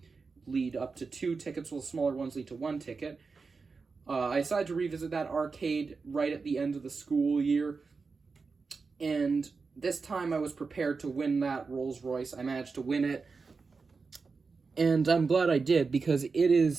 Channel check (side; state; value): left; quieter; 4.6 dB